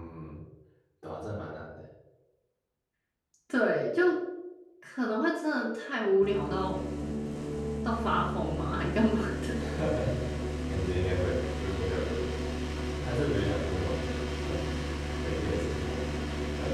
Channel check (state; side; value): identical; both; correlation 1.00